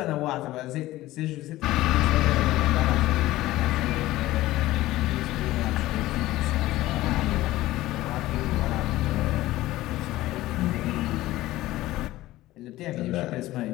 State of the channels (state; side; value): quieter; right; 16.5 dB